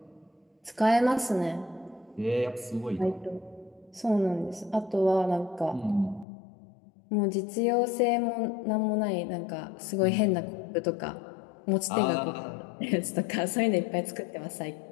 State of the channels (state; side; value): drops out; right; at 6.2 s